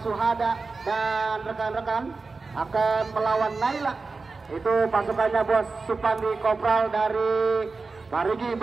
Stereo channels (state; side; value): quieter; left; 4.0 dB